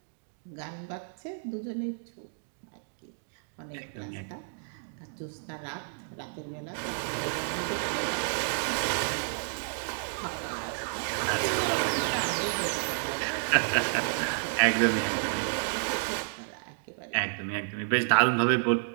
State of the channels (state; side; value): silent; left; digital silence